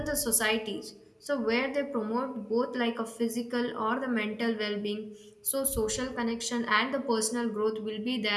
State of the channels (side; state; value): both; identical; correlation 1.00